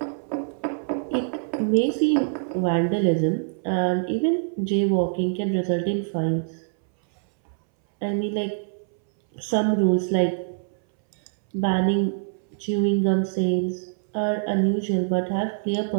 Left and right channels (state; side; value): silent; left; 62 dB below the other